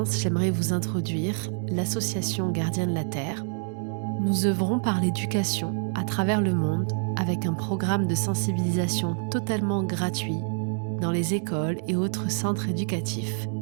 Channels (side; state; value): left; silent; 60 dB below the other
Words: j'aimerais vous introduire l'association Gardiens de la Terre. Nous œuvrons par l'éducation à travers le monde avec un programme de sensibilisation totalement gratuit dans les écoles et autres centres éducatifs,